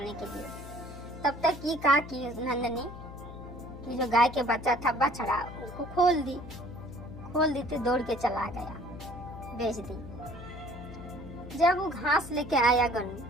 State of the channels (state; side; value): noise; left; hum, 13 dB below the sound